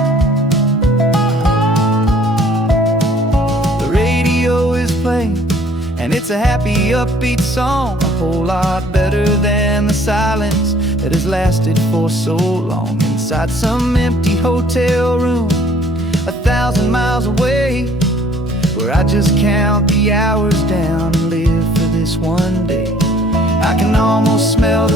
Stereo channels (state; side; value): normal; both; correlation 0.57